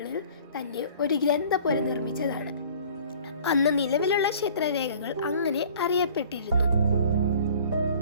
തന്നെ ഒരു ഗ്രന്ഥപുര നിർമ്മിച്ചതാണ്. അന്ന് നിലവിലുള്ള ക്ഷേത്രരേഖകൾ അങ്ങനെ അറിയപ്പെട്ടിരുന്നു.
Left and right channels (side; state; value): both; inverted; correlation -0.50